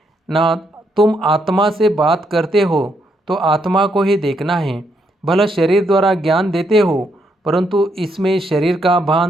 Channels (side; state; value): both; normal; correlation 0.76